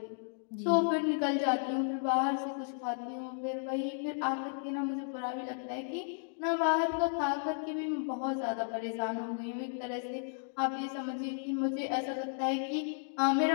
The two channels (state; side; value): silent; right; digital silence